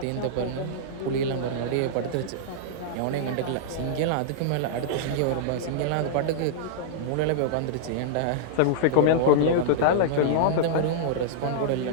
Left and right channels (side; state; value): both; different; correlation -0.02